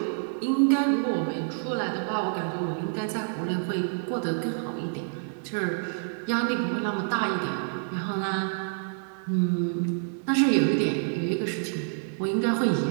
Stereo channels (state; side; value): silent; left; digital silence